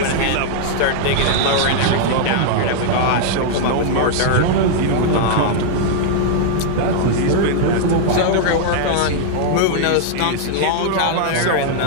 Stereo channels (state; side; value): different; both; correlation -0.01